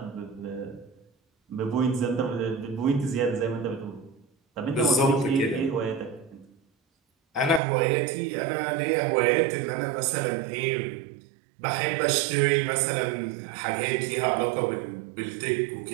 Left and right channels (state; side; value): drops out; left; at 7.6 s